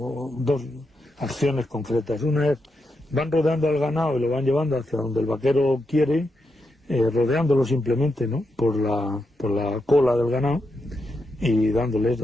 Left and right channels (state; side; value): normal; both; correlation 0.84